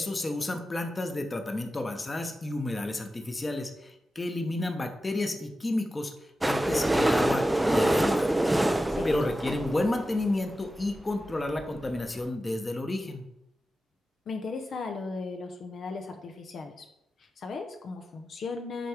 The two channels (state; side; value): normal; both; correlation 0.93